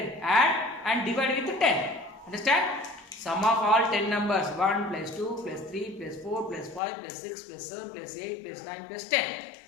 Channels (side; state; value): right; drops out; at 6.8 s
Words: Add and divide with 10. Understand? Sum of all 10 numbers 1 plus 2 plus 3 plus 4 plus 5 plus 6 plus 7 plus 8 plus 9 plus 10.